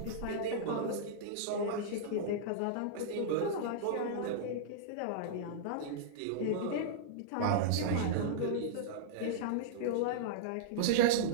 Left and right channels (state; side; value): different; both; correlation -0.02